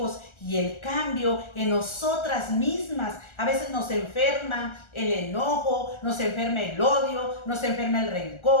y el cambio en nosotras mismas. A veces nos enferma el enojo, nos enferma el odio, nos enferma el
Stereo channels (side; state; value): right; late; 1.4 ms